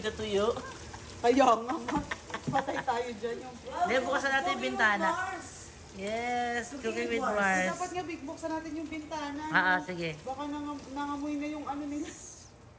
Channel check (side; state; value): both; identical; correlation 1.00